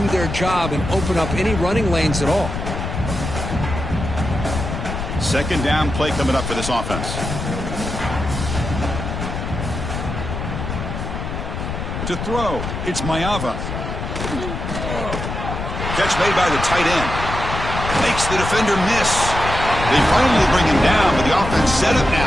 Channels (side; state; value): left; noise; rumble, 5 dB below the sound